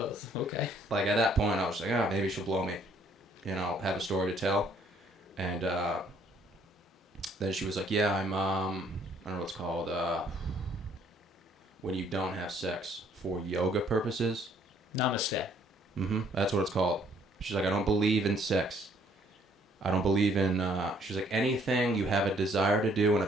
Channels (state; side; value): normal; both; correlation 0.64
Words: okay. Like, at that point, I was like, maybe she'll blow me. You know, have a story to tell. And then she was like, "Yeah, I'm, I don't know what it's called, when you don't have sex for yoga purposes." Namaste. Mm-hmm. That's what it's called. She's like, "I don't believe in sex. I don't believe in," she's like, "anything you have a desire to do and a